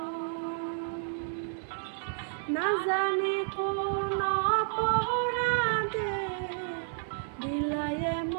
না জানি কোন অপরাধে দিলাই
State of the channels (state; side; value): silent; left; 57 dB below the other